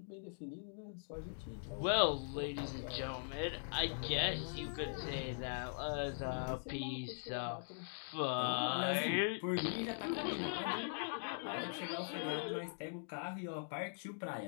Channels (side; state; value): right; silent; digital silence